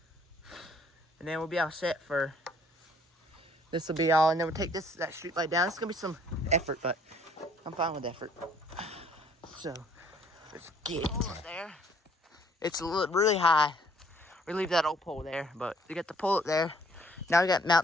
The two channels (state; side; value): normal; both; correlation 0.61